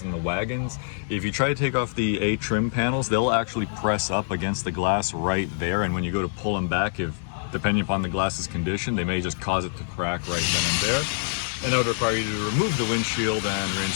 and the wagons, if you try to take off the A trim panels, they'll actually press up against the glass right there, and when you go to pull them back, depending upon the glass's condition, they may just cause it to crack right then and there. And that would require you to remove the windshield and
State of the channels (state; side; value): silent; right; 61 dB below the other